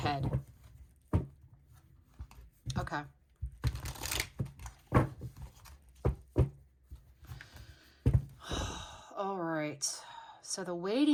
Okay. All right. So the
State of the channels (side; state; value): both; identical; correlation 1.00